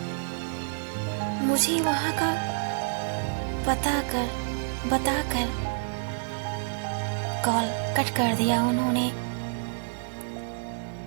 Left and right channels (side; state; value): left; silent; digital silence